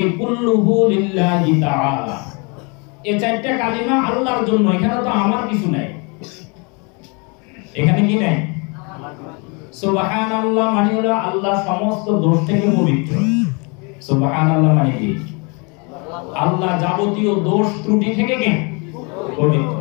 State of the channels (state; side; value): quieter; right; 31.7 dB